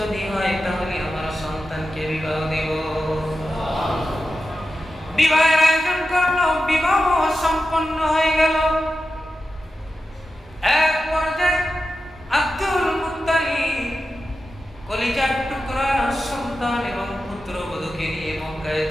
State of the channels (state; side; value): normal; both; correlation 0.92